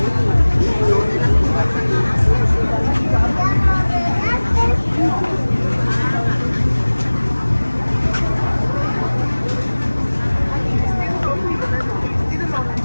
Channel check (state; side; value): inverted; both; correlation -1.00